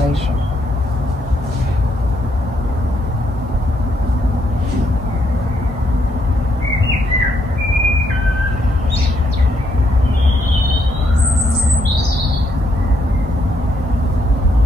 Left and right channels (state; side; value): normal; both; correlation 0.75